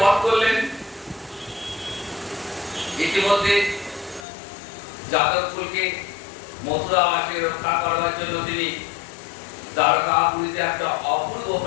বধ করলেন। ইতিমধ্যে যাদবকুলকে মথুরাবাসী রক্ষা করার জন্য তিনি দ্বারকাপুরীতে একটা অপূর্ব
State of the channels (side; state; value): right; drops out; at 4.2 s